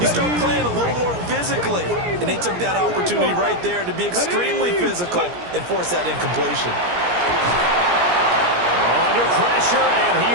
start playing a little more physically. And they took that opportunity right there to be extremely physical and force that incompletion. Under pressure, and he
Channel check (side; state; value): left; late; 17 ms